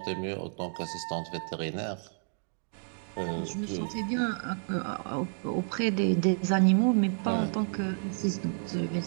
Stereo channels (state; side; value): silent; left; 57 dB below the other